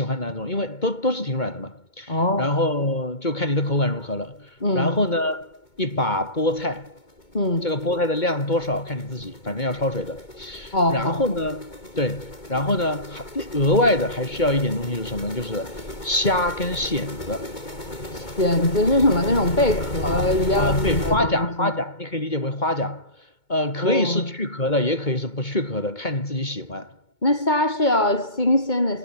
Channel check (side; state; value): right; late; 2.2 ms